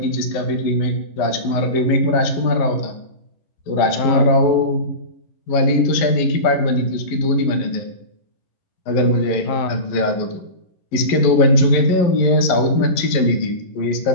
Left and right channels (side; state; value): right; late; 11 ms